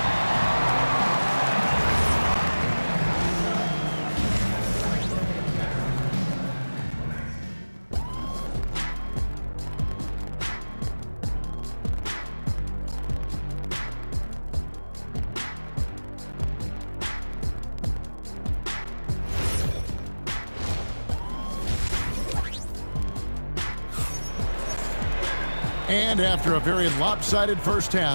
And after a very lopsided first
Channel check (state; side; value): inverted; both; correlation -1.00